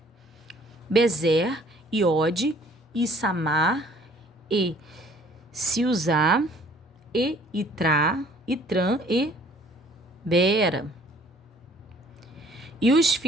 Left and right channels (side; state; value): both; normal; correlation 0.56